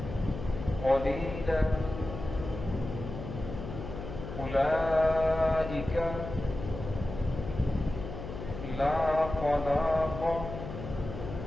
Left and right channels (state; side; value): noise; left; hum, 9 dB below the sound